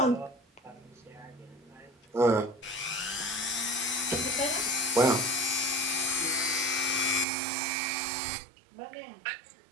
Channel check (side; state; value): left; drops out; at 7.2 s